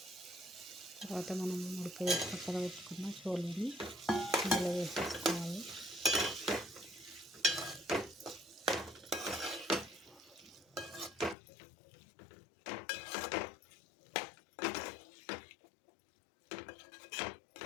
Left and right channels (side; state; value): right; drops out; at 11.4 s